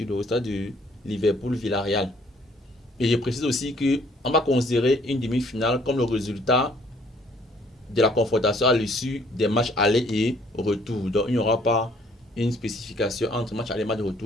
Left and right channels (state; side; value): normal; both; correlation 0.61